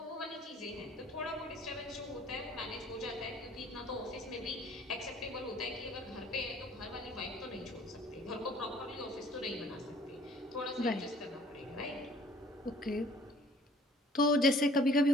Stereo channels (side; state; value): both; normal; correlation 0.55